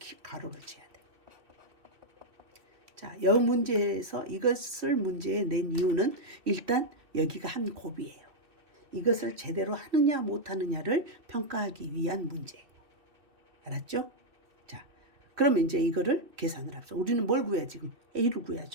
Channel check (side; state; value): left; late; 2.6 ms